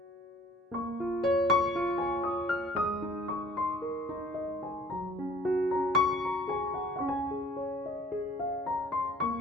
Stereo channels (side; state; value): both; normal; correlation 0.53